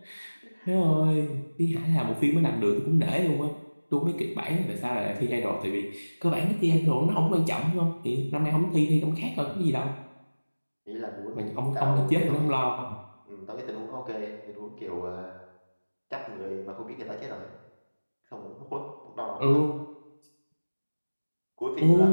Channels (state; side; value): inverted; both; correlation -1.00